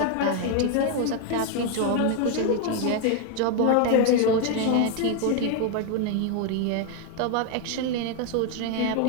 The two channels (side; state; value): both; different; correlation 0.01